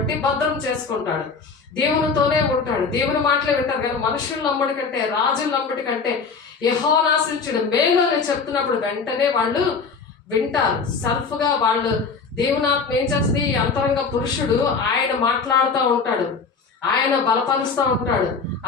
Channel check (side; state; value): right; quieter; 5.0 dB